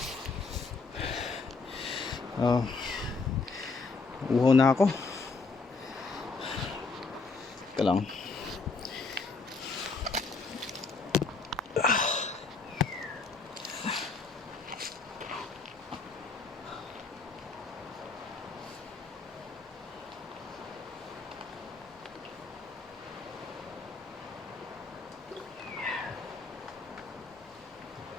Uhaw na ako. Teka lang.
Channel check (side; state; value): right; quieter; 4.1 dB